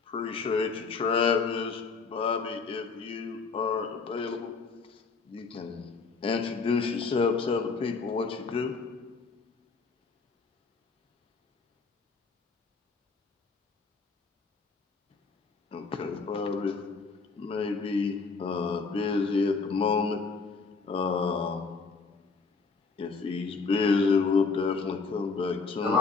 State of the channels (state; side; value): quieter; right; 4.6 dB